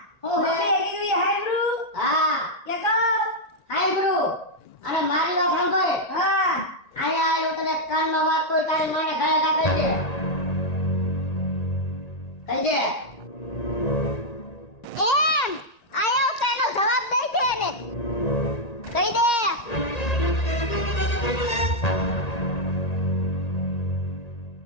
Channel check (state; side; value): late; right; 1.9 ms